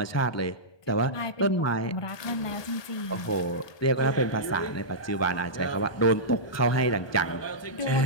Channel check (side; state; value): right; late; 1.2 ms